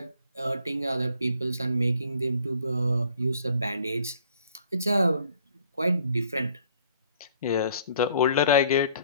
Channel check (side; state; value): both; inverted; correlation -0.59